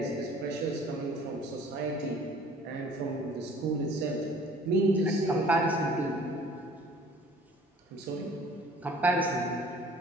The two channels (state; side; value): normal; both; correlation 0.51